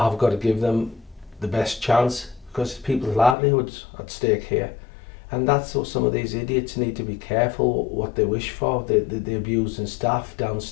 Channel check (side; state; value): right; drops out; at 3.4 s